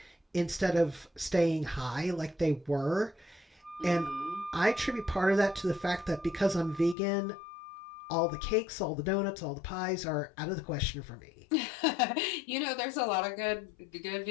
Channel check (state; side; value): drops out; right; at 7.0 s